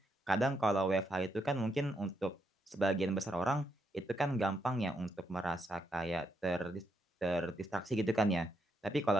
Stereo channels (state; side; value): normal; both; correlation 0.80